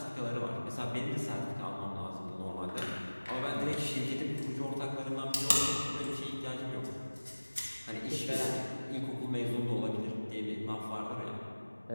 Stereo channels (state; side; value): inverted; both; correlation -1.00